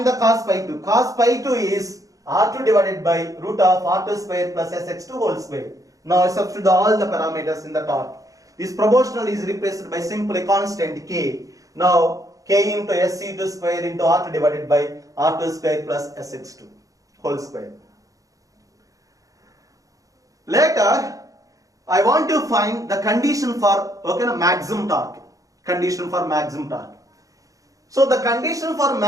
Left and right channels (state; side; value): late; left; 0.17 ms